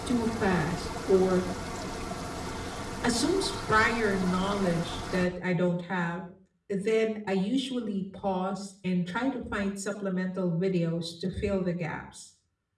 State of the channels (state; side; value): identical; both; correlation 1.00